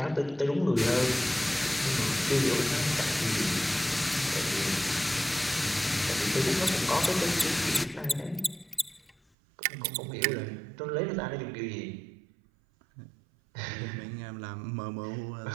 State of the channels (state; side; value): drops out; left; at 9.2 s